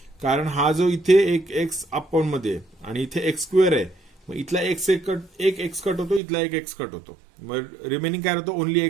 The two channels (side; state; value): left; drops out; at 6.2 s